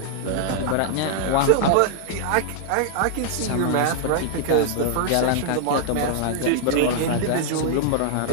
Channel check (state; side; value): different; both; correlation -0.01